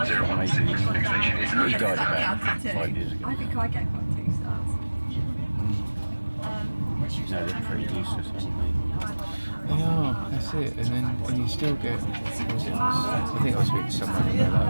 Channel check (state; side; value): inverted; both; correlation -1.00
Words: Next station is He Ashford. died about 5 years ago. I think I get quite 2 stars. No, they're pretty useless, aren't they? They are, that's it. And then when you still get, what was it? I think I was speaking to someone and they're like,